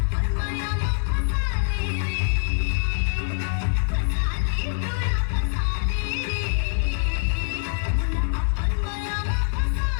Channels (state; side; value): silent; right; 62 dB below the other